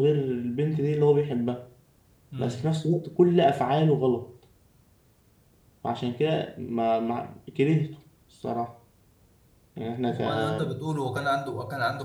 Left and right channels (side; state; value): both; identical; correlation 1.00